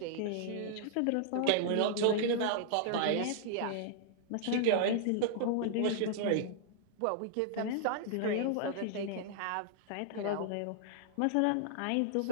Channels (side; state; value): both; different; correlation -0.01